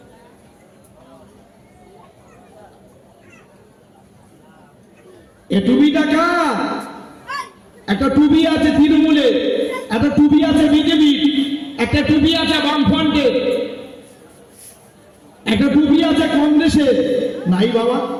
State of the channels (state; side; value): identical; both; correlation 1.00